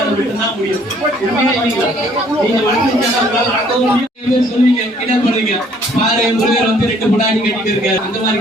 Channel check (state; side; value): normal; both; correlation 0.61